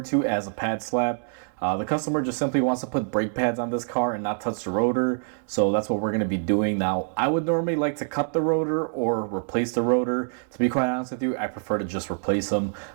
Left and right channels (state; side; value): silent; left; 61 dB below the other